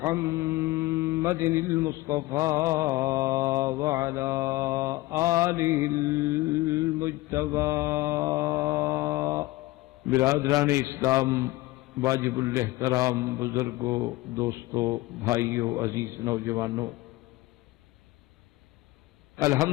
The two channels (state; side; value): quieter; right; 19.1 dB